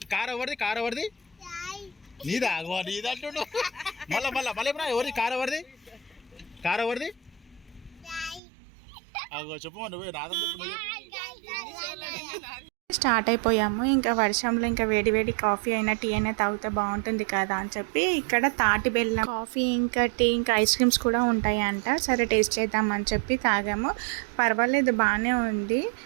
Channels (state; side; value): drops out; left; at 8.4 s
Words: స్టార్ట్ అయిపోయాము. ఇంకా వర్షంలో ఇంకా వేడి వేడి కాఫీ అయినా టీ అయినా తాగితే బాగుంటుంది కదా అని చెప్పి ఇక్కడ తాటి బెల్లం కాఫీ ఇంకా టీ ఇంకా ఐస్ క్రీమ్స్ కూడా ఉంటాయి అంట. సరే టేస్ట్ చేద్దామని చెప్పి తాగాము. పర్వాలేదు, బాగానే ఉంది.